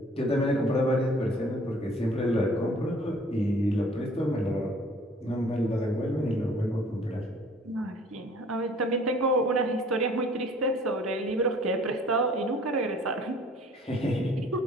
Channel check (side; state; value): both; normal; correlation 0.53